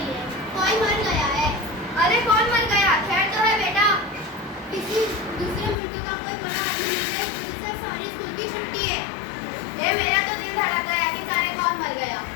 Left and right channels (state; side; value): drops out; right; at 5.8 s